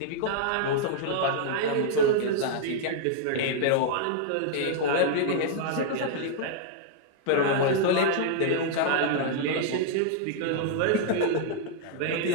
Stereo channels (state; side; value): different; both; correlation -0.01